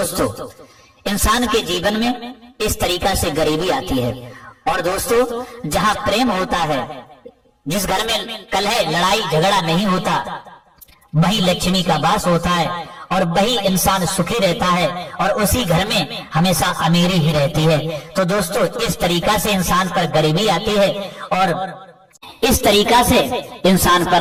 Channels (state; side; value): identical; both; correlation 1.00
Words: इंसान के जीवन में इस तरीका से गरीबी आती है। और दोस्तों, जहां प्रेम होता है, जिस घर में कलह लड़ाई झगड़ा नहीं होता, वही लक्ष्मी का वास होता है और वही इंसान सुखी रहता है और उसी घर में हमेशा अमीरी ही रहती है। तो दोस्तों, इस तरीका से इंसान पर गरीबी आती है और इस तरीका से इंसान पर